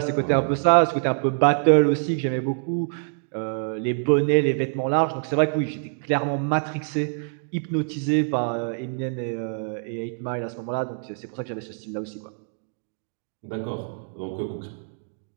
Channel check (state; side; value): silent; left; digital silence